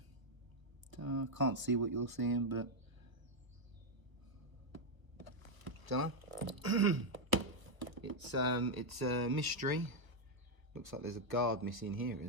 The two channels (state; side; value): late; left; 1.1 ms